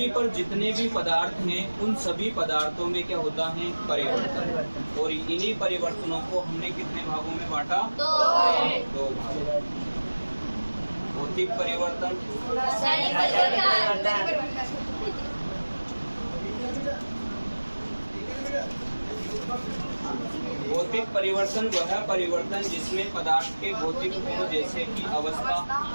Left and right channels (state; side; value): inverted; both; correlation -1.00